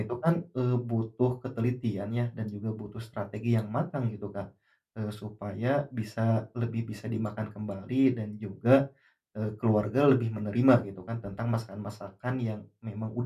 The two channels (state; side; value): identical; both; correlation 1.00